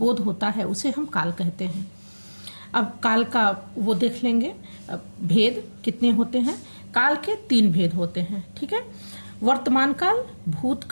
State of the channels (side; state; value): both; inverted; correlation -1.00